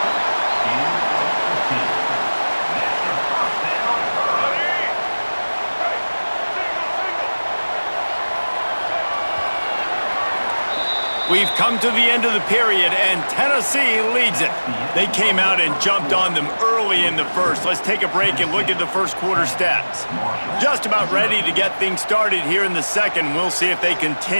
We've come to the end of the period, and Tennessee leads it. They came out and jumped on them early in the first. Let's take a break and look at the first quarter stats. Just about ready to get things started here in the second. We'll see if they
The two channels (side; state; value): both; inverted; correlation -1.00